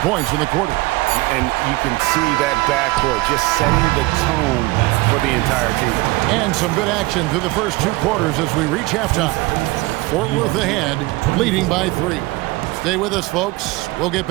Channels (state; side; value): quieter; left; 21.4 dB